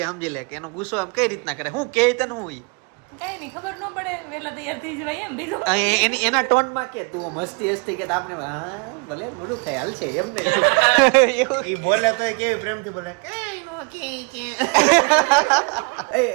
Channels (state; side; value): quieter; left; 34.5 dB